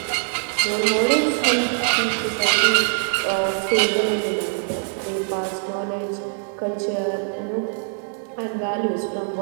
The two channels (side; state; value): left; silent; digital silence